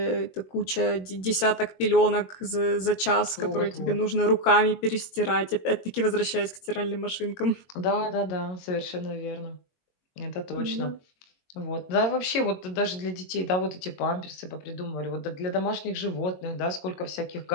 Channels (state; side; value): late; right; 21 ms